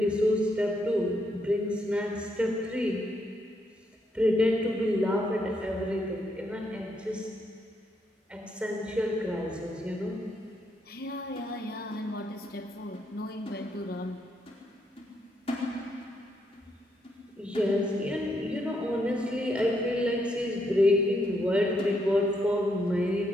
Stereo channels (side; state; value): both; normal; correlation 0.76